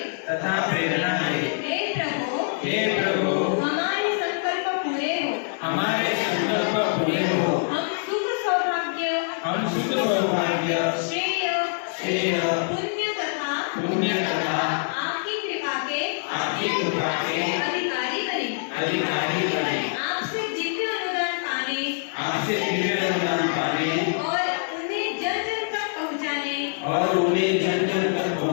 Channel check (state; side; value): silent; right; digital silence